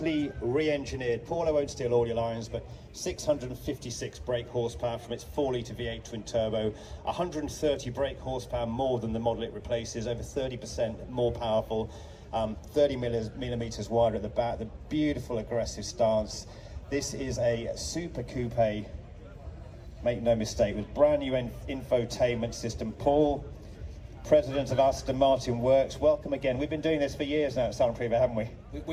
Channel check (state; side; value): identical; both; correlation 1.00